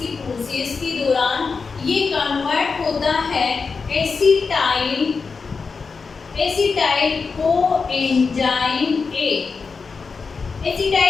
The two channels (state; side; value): quieter; right; 4.9 dB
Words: प्रोसेस के दौरान, ये कन्वर्ट होता है acetyl coenzyme A,